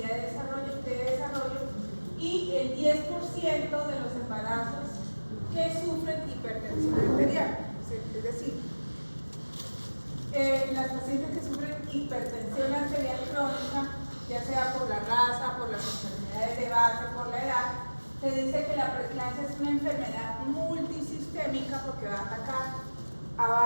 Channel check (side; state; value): both; inverted; correlation -1.00